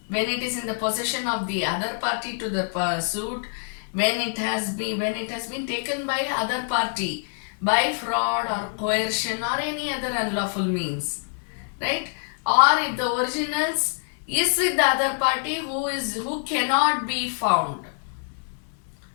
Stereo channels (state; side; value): silent; right; 58 dB below the other